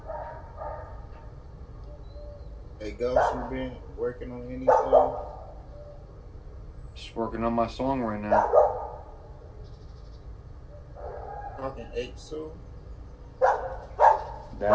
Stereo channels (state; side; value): identical; both; correlation 1.00